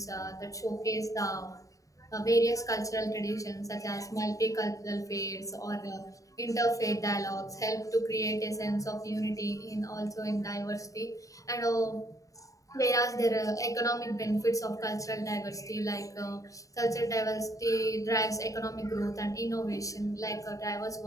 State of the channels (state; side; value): late; right; 0.16 ms